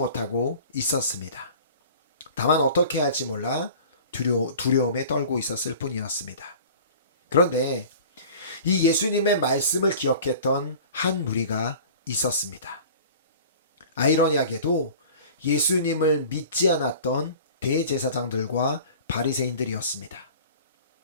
있었습니다. 다만 어떻게 할지 몰라 두려움에 떨고 있었을 뿐이었습니다. 그런데 이 예수님의 말씀을 기억했던 한 무리가 있었습니다. 아이러니하게도 예수님을 믿지 않았던 대제사장들과 바리새인들이었습니다.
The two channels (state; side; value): inverted; both; correlation -0.42